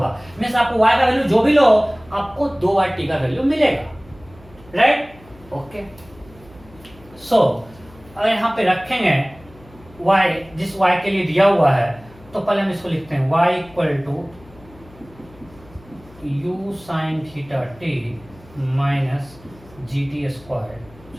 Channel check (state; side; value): noise; left; hum, 24 dB below the sound